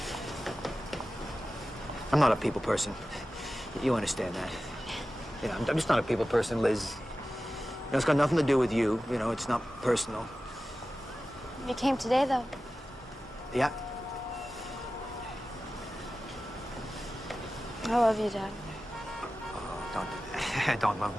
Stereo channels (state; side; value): normal; both; correlation 0.95